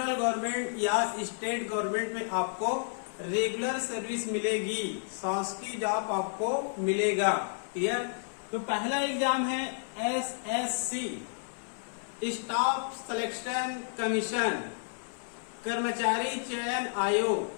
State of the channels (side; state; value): right; silent; 56 dB below the other